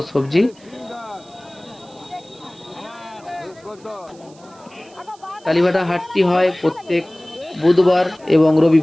সবজি। কালীবাটা হাটটি হয় প্রত্যেক বুধবার এবং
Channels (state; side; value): noise; right; hiss, 27 dB below the sound